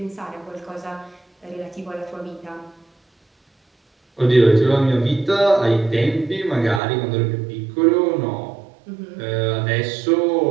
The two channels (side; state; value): left; drops out; at 6.8 s